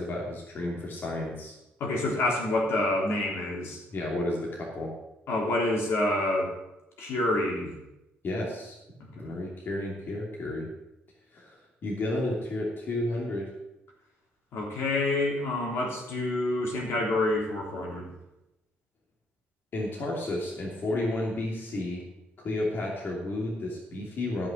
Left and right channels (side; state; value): both; normal; correlation 0.68